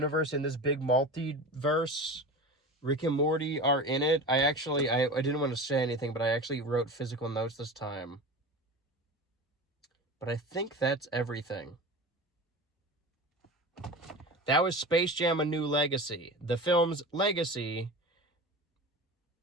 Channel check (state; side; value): normal; both; correlation 0.31